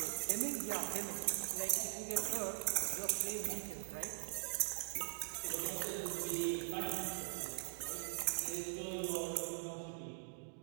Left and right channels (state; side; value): silent; left; digital silence